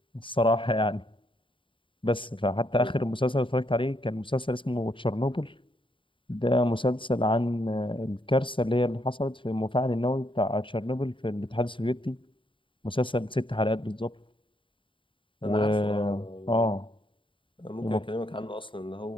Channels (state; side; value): late; right; 0.25 ms